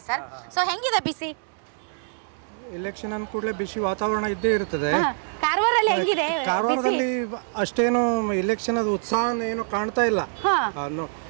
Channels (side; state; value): left; silent; 62 dB below the other